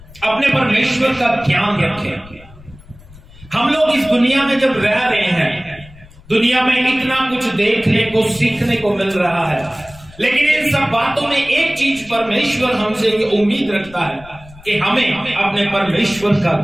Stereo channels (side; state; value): left; noise; rumble, 22 dB below the sound